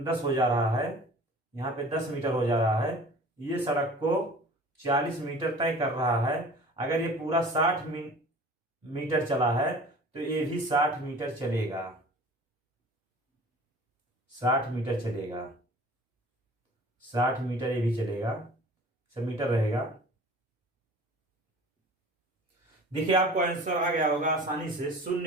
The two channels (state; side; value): normal; both; correlation 0.44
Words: 10 हो जा रहा है, यहाँ पे 10 मीटर हो जा रहा है, ये सड़क को 40 मीटर तय कर रहा है। अगर ये पूरा 60 मीटर चला है तो ये भी 60 मीटर चलेगा, 60 मीटर चलेगा, 60 मीटर ये भी चलेगा। मीटर रहेगा। देखिए आपको आंसर आ गया होगा आसानी से,